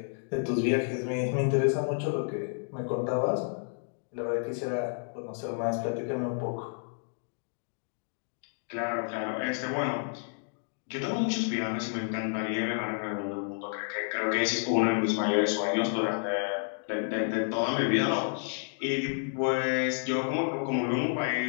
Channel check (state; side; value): silent; right; 56 dB below the other